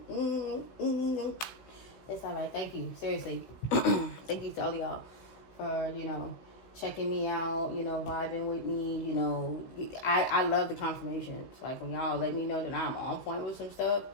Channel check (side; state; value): right; late; 16 ms